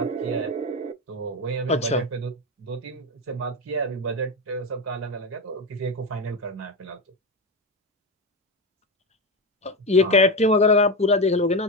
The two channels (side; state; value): both; normal; correlation 0.16